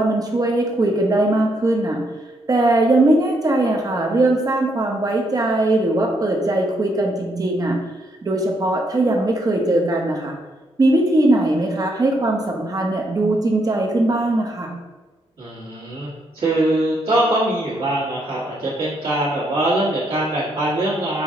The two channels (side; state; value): both; normal; correlation 0.75